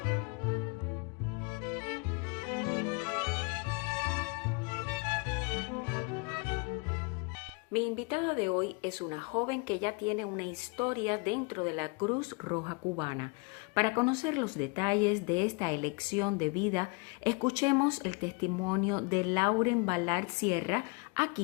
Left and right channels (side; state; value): right; quieter; 31.3 dB